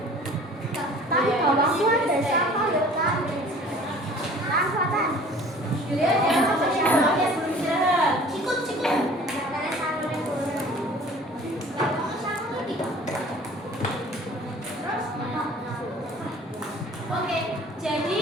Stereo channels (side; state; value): both; normal; correlation 0.48